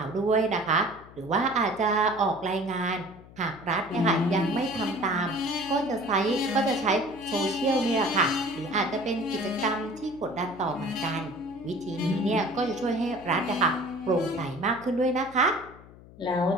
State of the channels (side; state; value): left; noise; hum, 21 dB below the sound